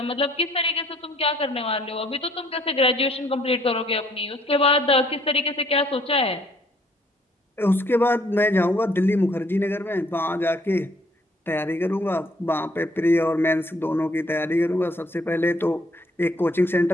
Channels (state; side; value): normal; both; correlation 0.64